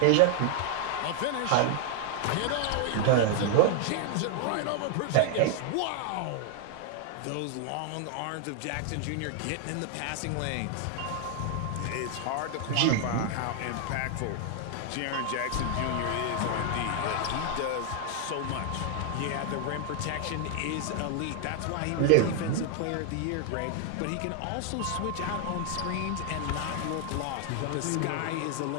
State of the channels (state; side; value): different; both; correlation 0.00